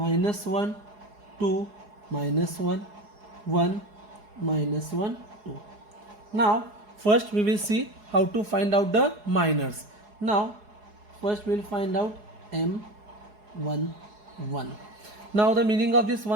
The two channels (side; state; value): left; late; 4.8 ms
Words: 1 2 minus 1 1 minus 1 2. Now first we will see how to find out the minors. Now first we will find out M1 1. Now the meaning of this